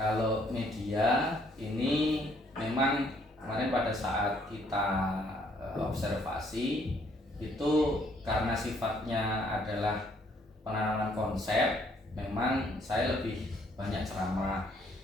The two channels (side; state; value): both; normal; correlation 0.66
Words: media ini memang kemarin pada saat kita observasi itu karena sifatnya adalah penanaman konsep, memang saya lebih banyak ceramah.